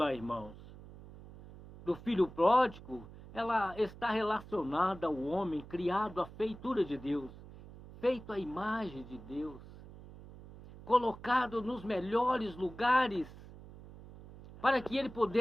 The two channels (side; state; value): right; noise; hum, 17 dB below the sound